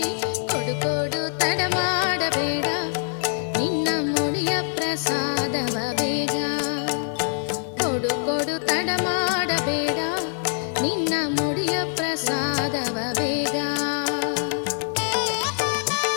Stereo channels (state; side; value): silent; right; 62 dB below the other